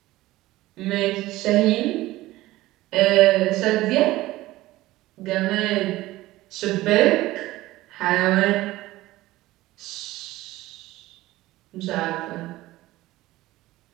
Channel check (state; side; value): quieter; left; 17.4 dB